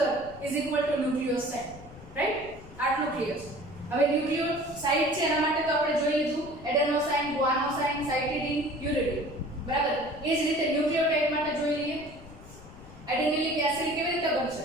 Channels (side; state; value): left; noise; rumble, 18 dB below the sound